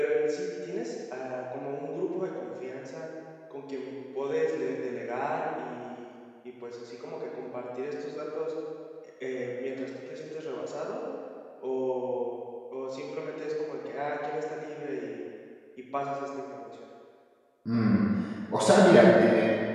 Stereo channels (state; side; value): identical; both; correlation 1.00